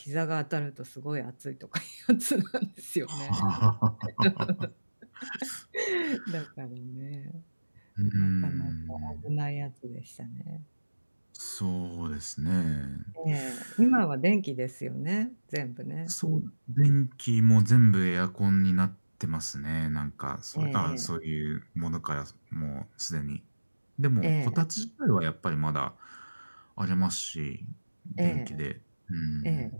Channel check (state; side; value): inverted; both; correlation -1.00